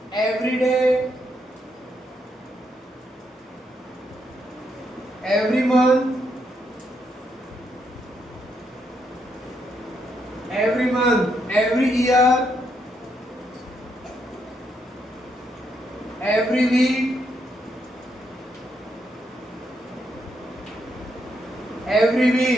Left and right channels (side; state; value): both; normal; correlation 0.78